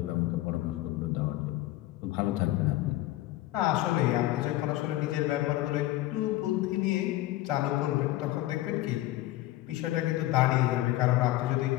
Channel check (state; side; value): quieter; right; 16.3 dB